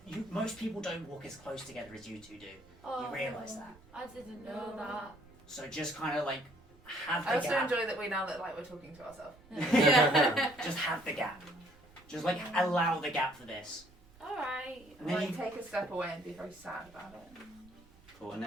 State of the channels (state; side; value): noise; right; rumble, 26 dB below the sound